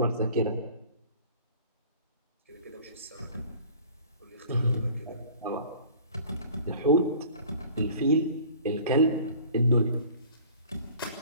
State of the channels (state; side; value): inverted; both; correlation -0.46